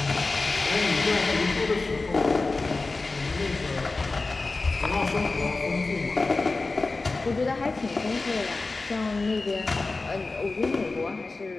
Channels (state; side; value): quieter; right; 3.5 dB